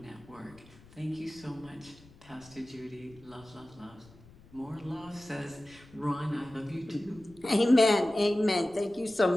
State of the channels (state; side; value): noise; left; rumble, 24 dB below the sound